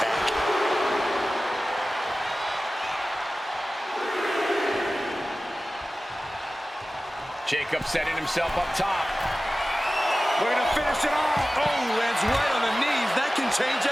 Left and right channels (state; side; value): normal; both; correlation 0.96